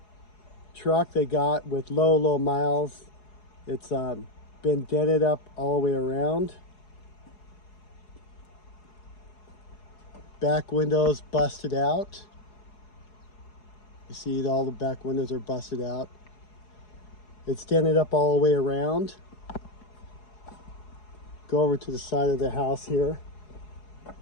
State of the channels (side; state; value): right; late; 4.8 ms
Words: truck they got with low miles. It's been dented up all the way around. Back windows busted out. You see all the back windows are busted out. It's dented up all the way around. Go over to the side of the house here.